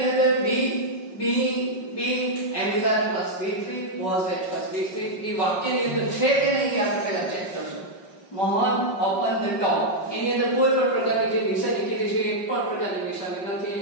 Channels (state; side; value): late; right; 5.4 ms